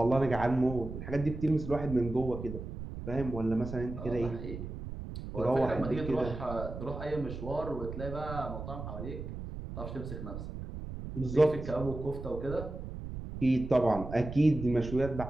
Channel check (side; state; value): right; noise; rumble, 8 dB below the sound